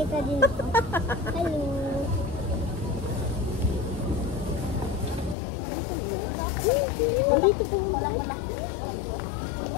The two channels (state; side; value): drops out; right; at 5.4 s